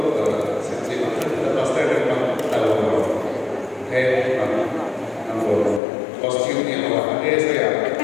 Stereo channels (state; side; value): drops out; right; at 5.8 s